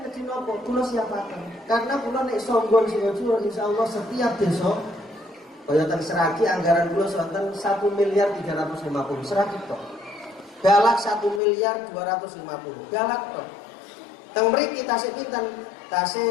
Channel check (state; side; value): drops out; right; at 11.4 s